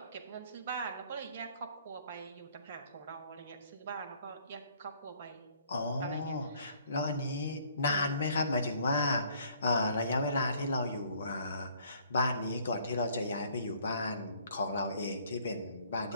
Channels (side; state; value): both; inverted; correlation -0.60